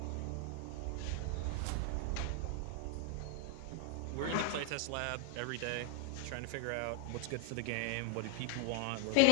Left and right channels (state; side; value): different; both; correlation 0.00